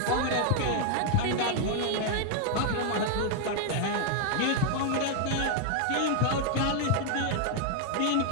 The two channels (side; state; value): both; different; correlation 0.00